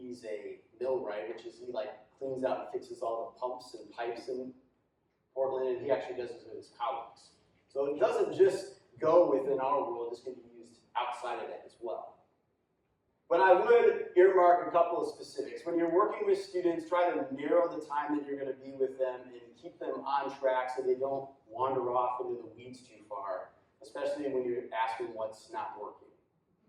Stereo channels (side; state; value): both; identical; correlation 1.00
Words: a millwright, which is he cleans out and fixes all the pumps and pipes in Portland, and he actually does this with his colleagues. So it doesn't just go within our world, it's going to be used outside of that as well. But I would earmark a couple of specifics. When you're working with students, try to narrow the time that you're going to be with them and keep them on track so they don't wander off into the weeds too far, especially when you're asking what's not working.